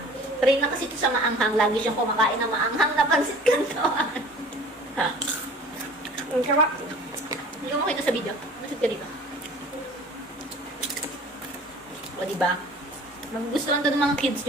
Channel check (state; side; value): normal; both; correlation 0.46